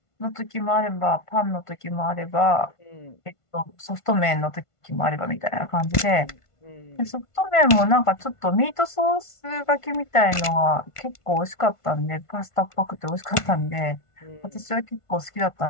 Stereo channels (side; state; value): right; late; 1.5 ms